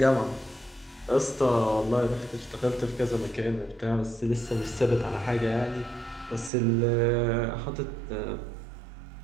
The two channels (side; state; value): left; drops out; at 6.5 s